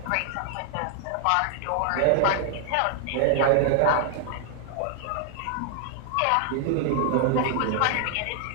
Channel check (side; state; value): both; different; correlation 0.00